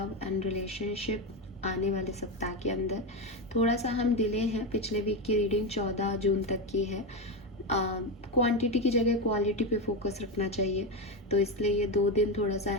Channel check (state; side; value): normal; both; correlation 0.13